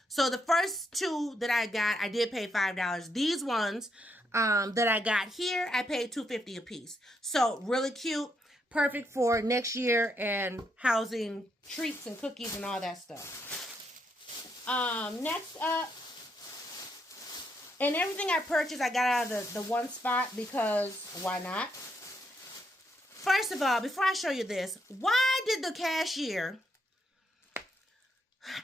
So the first 2 that I got, I did pay $5. These ones that I got here, I paid $2.50 a piece. So really cute, perfect for next year and housing treats and cookies and all that stuff. Next up, and everything I purchased, I got out of the one spot because why not? First of all, before I show you this, why did the cashier,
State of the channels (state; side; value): normal; both; correlation 0.77